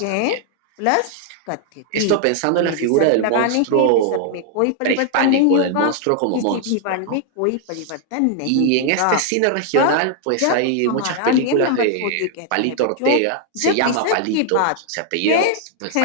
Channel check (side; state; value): both; different; correlation 0.00